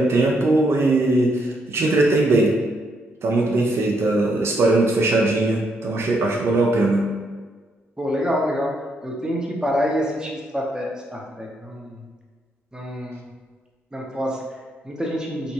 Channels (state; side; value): normal; both; correlation 0.76